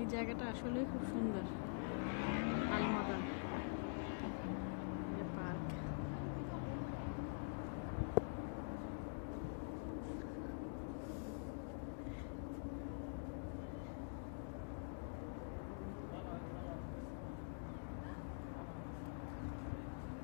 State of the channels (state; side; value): silent; right; digital silence